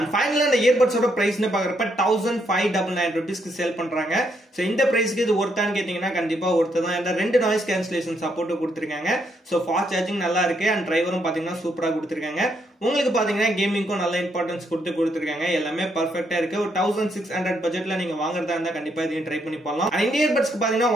ஃபைனலா இந்த இயர்பட்ஸோட பிரைஸ்னு பாக்குறப்ப 1599 rupeesக்கு சேல் பண்றாங்க. சோ இந்த பிரைஸ்க்கு இது ஒர்த்தான்னு கேட்டீங்கன்னா கண்டிப்பா ஒர்த்து தான். இந்த ரெண்டு நாய்ஸ் கேன்சலேஷன் சப்போர்ட் கொடுத்திருக்காங்க. சோ ஃபாஸ்ட் சார்ஜிங் நல்லா இருக்கு. அண்ட் டிரைவரும் பாத்தீங்கன்னா சூப்பரா கொடுத்திருக்காங்க. உங்களுக்கு பாத்தீங்கன்னா கேமிங்க்கும் நல்ல இம்பார்ட்டன்ஸ் கொடுத்திருக்காங்க. எல்லாமே பெர்ஃபெக்ட்டா இருக்கு. ஒரு 1600 பட்ஜெட்ல நீங்க வாங்குறதா இருந்தா கண்டிப்பா இதையும் ட்ரை பண்ணி பண்ணலாம். இந்த இயர்பட்ஸ்க்கு பாத்தீங்கன்னா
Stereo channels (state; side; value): normal; both; correlation 0.75